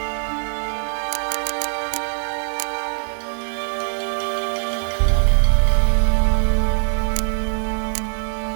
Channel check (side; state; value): left; silent; digital silence